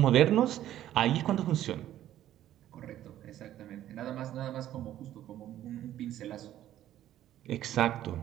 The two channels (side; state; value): left; quieter; 12.5 dB